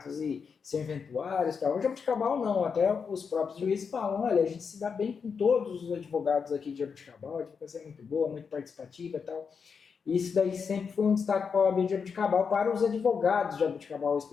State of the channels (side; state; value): right; quieter; 5.9 dB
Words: e serventuários. Tal. O Jaboticabal não, até os próprios juízes falam, olha, a gente se dá bem com todos os advogados aqui de Jaboticabal, a advocacia é muito boa, muito participativa e tal. E isso daí sempre foi um destaque para a OAB de Jaboticabal, para os advogados de Jaboticabal